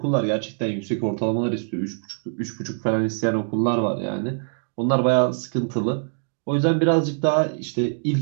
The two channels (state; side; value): silent; left; digital silence